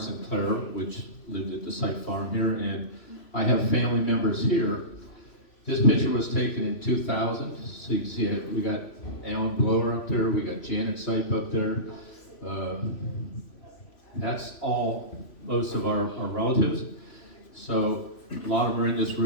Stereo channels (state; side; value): late; right; 3.0 ms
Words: and Clara, which lived at the Sipe farm here, and I have family members here. This picture was taken in 2000, so you can see it. We got Alan Blower up there, we got Janet Sipe up there. That's all, most of our relatives. So a lot of them are in this